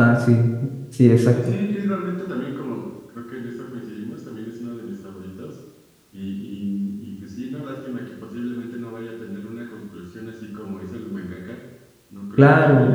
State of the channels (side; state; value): both; identical; correlation 1.00